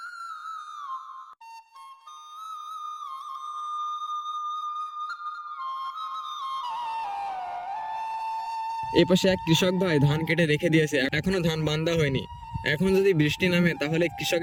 এই পাশে এক কৃষক ভাই ধান কেটে রেখে দিয়েছে, এখনো ধান বান্ধা হয়নি। এখন যদি বৃষ্টি নামে তাহলে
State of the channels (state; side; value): identical; both; correlation 1.00